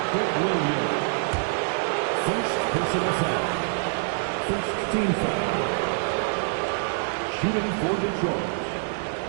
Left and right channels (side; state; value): left; silent; digital silence